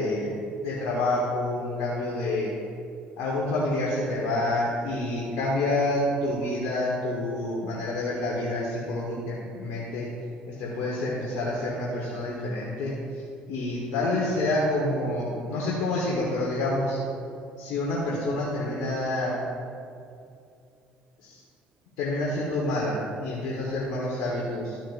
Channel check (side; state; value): both; normal; correlation 0.47